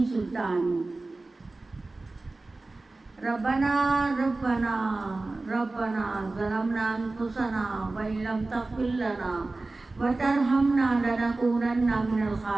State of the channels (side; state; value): left; quieter; 3.3 dB